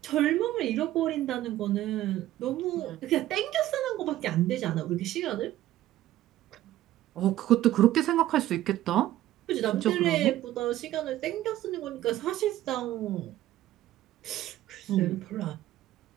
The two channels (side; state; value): left; quieter; 14.1 dB